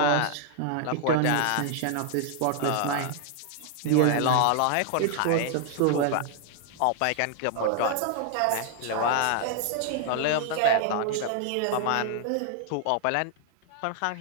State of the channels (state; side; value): different; both; correlation 0.00